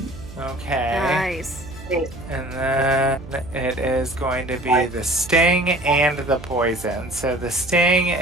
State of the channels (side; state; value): right; noise; hum, 16 dB below the sound